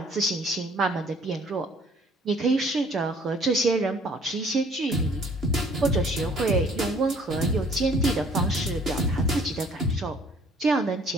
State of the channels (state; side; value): normal; both; correlation 0.57